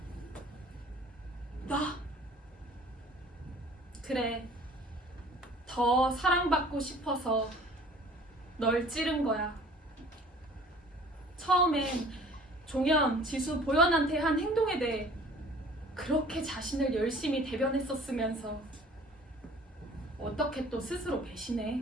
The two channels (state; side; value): normal; both; correlation 0.50